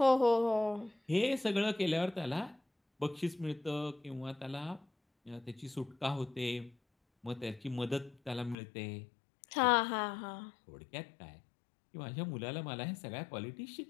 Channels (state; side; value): drops out; right; at 8.6 s